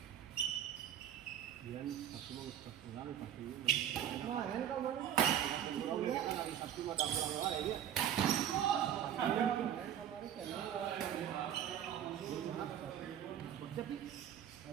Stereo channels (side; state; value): left; quieter; 10.1 dB